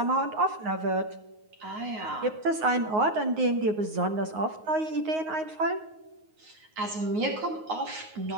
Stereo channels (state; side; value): late; left; 9.5 ms